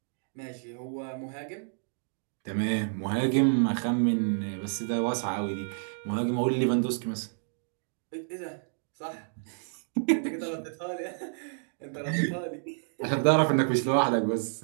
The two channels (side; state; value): left; silent; digital silence